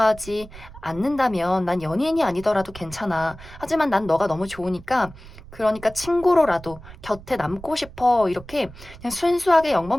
않는다면 난 연인이 아니더라도 괜찮아. 하지만 난 너가 너무 좋으니까 그러니까 친구로라도 곁에 남고 싶어. 이렇게 그냥 순수하게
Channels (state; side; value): noise; right; rumble, 17 dB below the sound